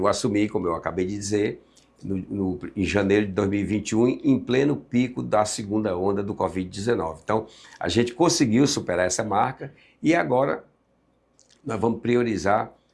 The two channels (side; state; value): both; identical; correlation 1.00